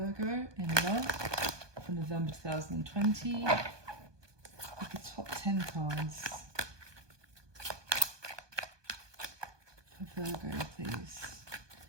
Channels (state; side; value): late; left; 1.2 ms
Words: in love for November 2020? With the top 10 cards for Virgo, please.